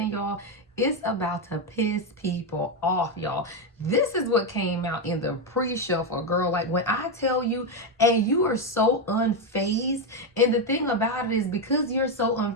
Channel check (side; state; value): both; normal; correlation 0.07